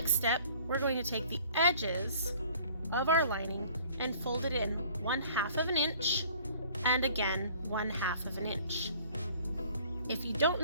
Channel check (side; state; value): both; inverted; correlation -0.53